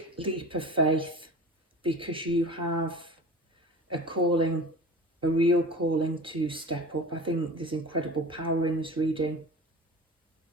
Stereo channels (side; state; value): both; normal; correlation 0.36